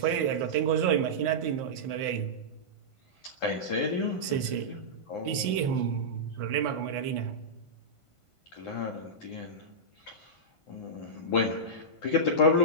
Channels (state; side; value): late; right; 1.5 ms